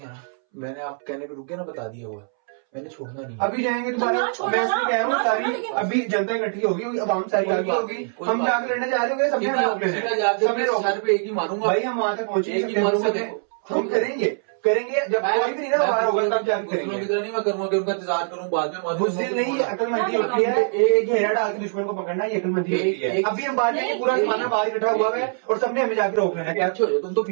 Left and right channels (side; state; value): left; silent; 63 dB below the other